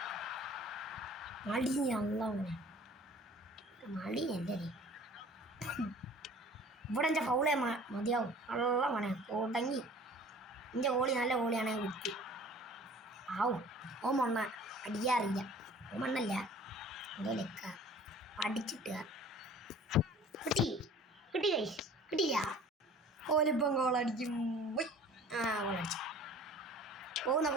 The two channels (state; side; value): normal; both; correlation 0.47